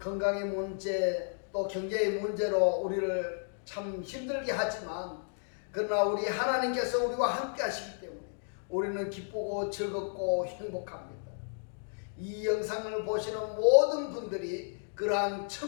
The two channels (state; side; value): silent; right; digital silence